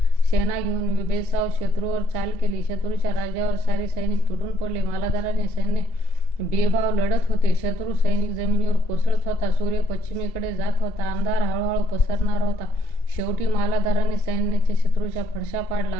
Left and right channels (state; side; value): late; right; 2.7 ms